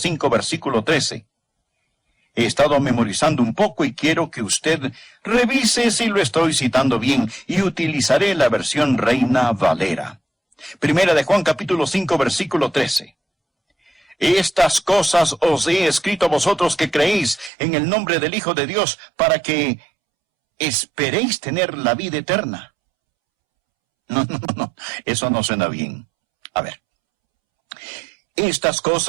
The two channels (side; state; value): left; drops out; at 17.5 s